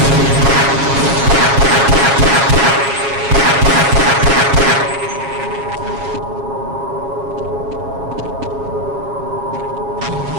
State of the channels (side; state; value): left; late; 7.3 ms